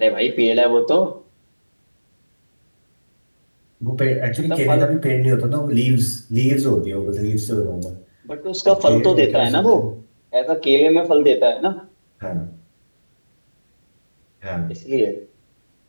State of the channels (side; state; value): both; inverted; correlation -1.00